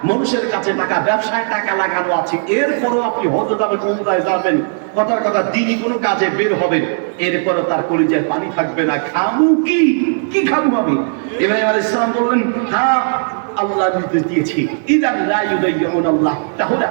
মানুষের কাছে টাকা, ব্যবসায় টাকা লাগানো আছে। এরপরও আপনি হজ যাবেন, উমরায় যাবেন, কথার কথা দিনই কোনো কাজে বের হবেন, এরপরে তার কলিজায় পানি থাকবে না। খামু কি? কি খামু আমি? ইব্রাহিম আলাইহিস সালাম বললেন, হ্যাঁ আল্লাহ নির্দেশ দিয়েছি, ইদান লা ইউদাইয়ুন আল্লাহ, তাহলে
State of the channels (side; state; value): left; silent; digital silence